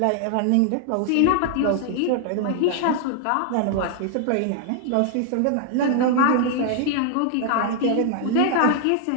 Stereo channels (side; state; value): both; different; correlation 0.00